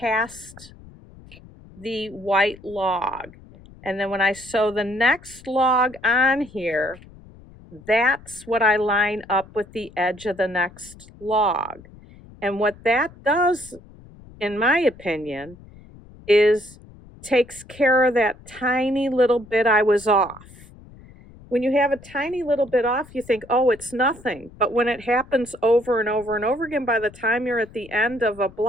the white log. And then when I sew the next log on here, that's what I line up with the edge of the next log. And what that does, in my opinion, is takes care of that tiny little bit I was off. When you have a tiny little bit off, you think, oh, it's nothing. But when it happens over and over and over again, by the time you're at the end of a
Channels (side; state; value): left; noise; rumble, 21 dB below the sound